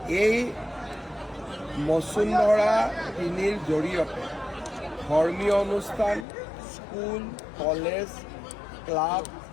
এই বসুন্ধৰা ৩ৰ জৰিয়তে ধৰ্মীয় অনুষ্ঠান, school, college, club,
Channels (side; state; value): right; drops out; at 6.2 s